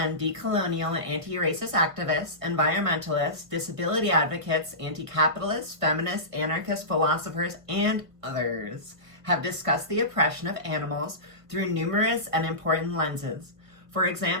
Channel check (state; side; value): late; left; 1.5 ms